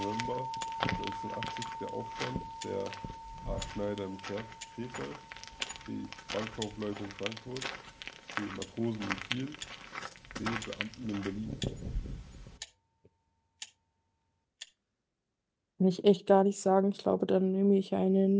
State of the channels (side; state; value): both; identical; correlation 1.00